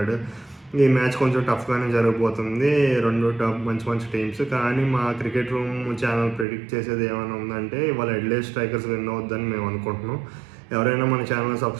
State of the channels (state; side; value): drops out; left; at 6.5 s